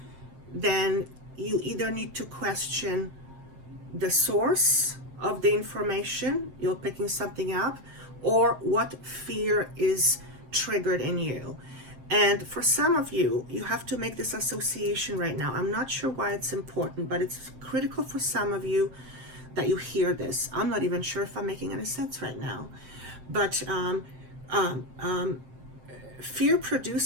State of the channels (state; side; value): late; left; 7.7 ms